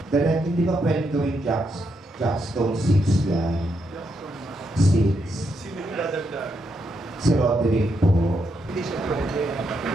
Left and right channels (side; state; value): both; normal; correlation 0.80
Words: Direct, hindi ba pwedeng gawin Jackstone 6 yan? 6. Si Roderick po. Hindi siya pwede.